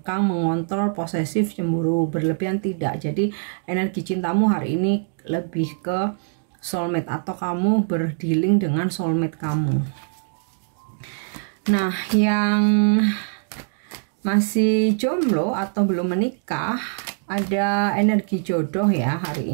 mengontrol, posesif, cemburu berlebihan, tidak. Jadi energi cintamu hari ini lebih ke soulmate, atau kamu berdealing dengan soulmate kamu. Nah, yang masih jomblo atau belum menikah, ada energi jodoh ya hari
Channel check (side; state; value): left; silent; digital silence